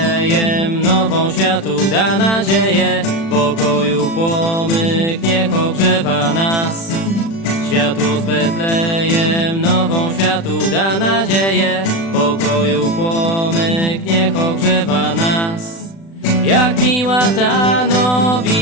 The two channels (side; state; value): right; late; 36 ms